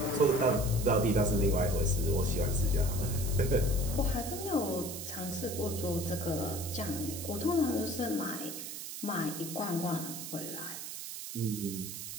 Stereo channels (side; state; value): right; noise; hiss, 8 dB below the sound